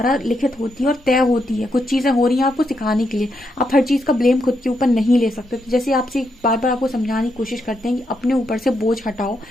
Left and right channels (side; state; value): both; normal; correlation 0.81